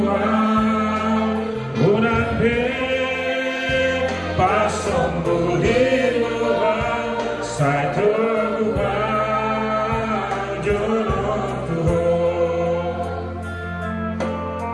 bulan pasong budi luar saya tergubah jodoh Tuhan.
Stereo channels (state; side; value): identical; both; correlation 1.00